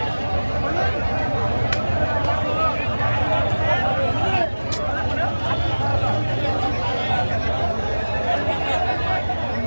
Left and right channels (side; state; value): both; inverted; correlation -1.00